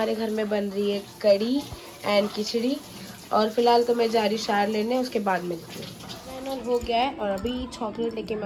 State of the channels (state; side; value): identical; both; correlation 1.00